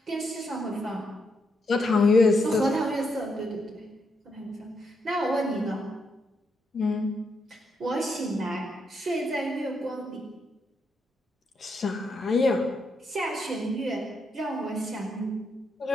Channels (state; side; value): normal; both; correlation 0.80